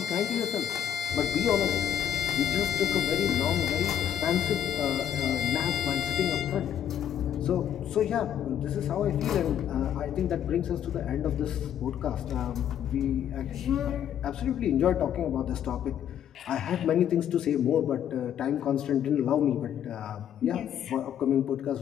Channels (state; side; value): quieter; right; 9.6 dB